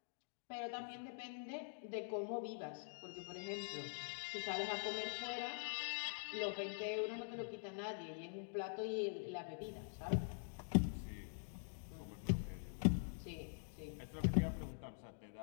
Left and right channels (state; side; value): silent; right; digital silence